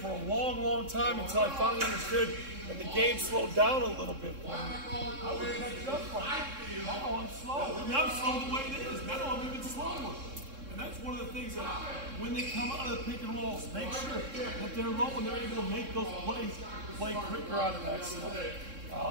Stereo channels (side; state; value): left; late; 3.7 ms